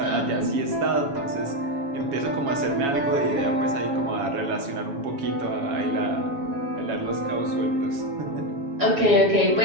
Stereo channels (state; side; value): late; left; 7.2 ms